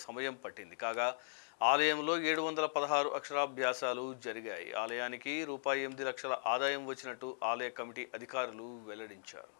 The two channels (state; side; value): silent; right; digital silence